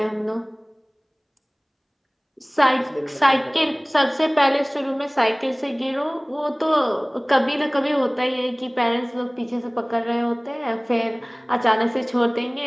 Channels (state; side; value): identical; both; correlation 1.00